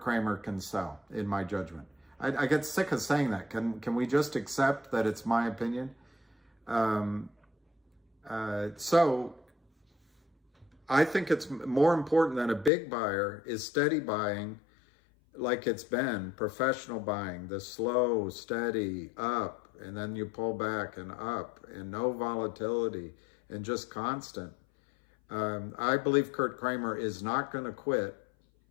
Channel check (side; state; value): right; drops out; at 12.7 s